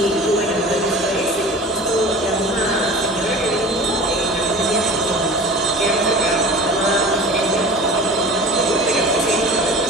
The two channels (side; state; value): both; normal; correlation 0.39